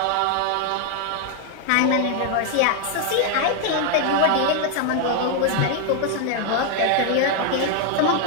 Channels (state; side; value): different; both; correlation 0.00